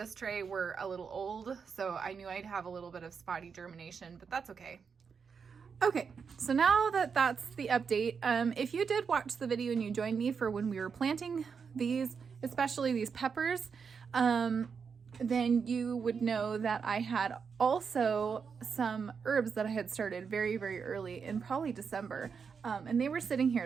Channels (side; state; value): left; quieter; 6.0 dB